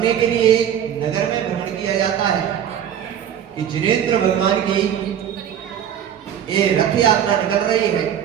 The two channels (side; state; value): left; quieter; 9.5 dB